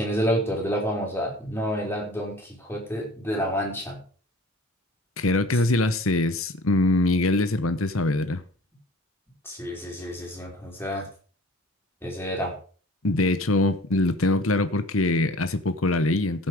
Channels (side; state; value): both; normal; correlation 0.46